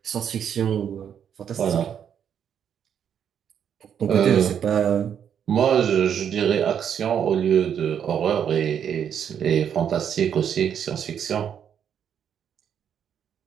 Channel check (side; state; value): left; quieter; 8.5 dB